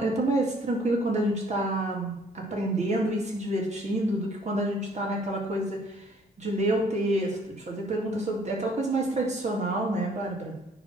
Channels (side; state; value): both; normal; correlation 0.59